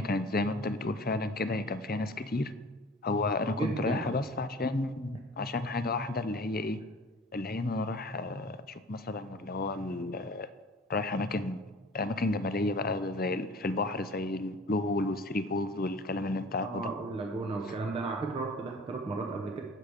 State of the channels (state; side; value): normal; both; correlation 0.45